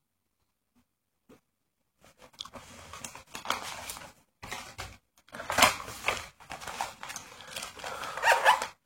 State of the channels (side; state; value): both; identical; correlation 1.00